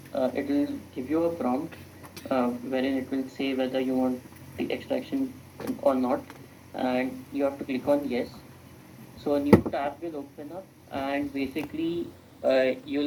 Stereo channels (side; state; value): both; identical; correlation 1.00